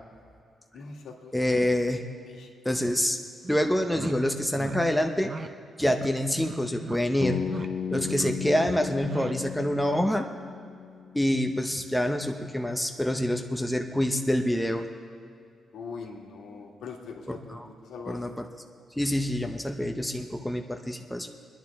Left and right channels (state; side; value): normal; both; correlation 0.93